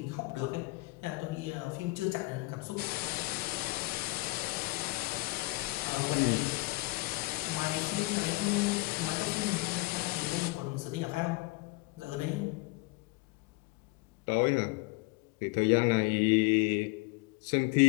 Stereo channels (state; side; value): quieter; right; 23.5 dB